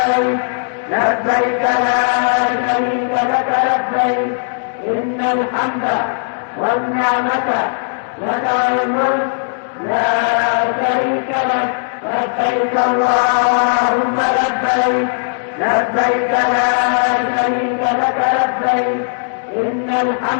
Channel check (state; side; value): silent; right; digital silence